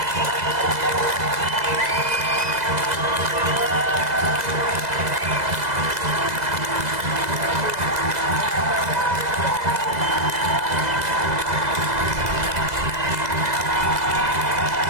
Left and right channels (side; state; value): left; late; 2.0 ms